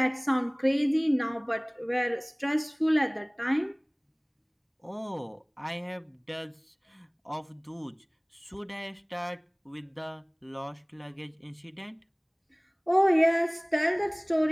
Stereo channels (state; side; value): identical; both; correlation 1.00